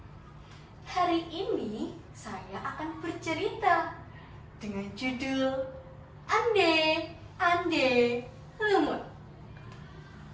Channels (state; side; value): identical; both; correlation 1.00